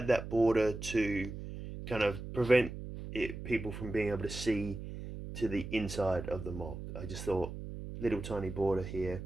that border to kind of prevent people from being able to see to the inside of the mock. I just thought little tiny border here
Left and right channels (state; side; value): noise; right; hum, 9 dB below the sound